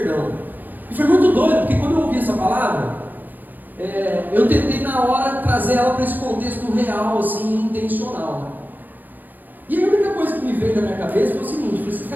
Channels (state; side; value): late; left; 0.086 ms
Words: E foi muito doido, porque quando eu ouvi essa palavra, eu tentei na hora trazer ela para esse contexto real, assim, intencional. E a única coisa que me veio na minha cabeça foi o seguinte, eu falei assim,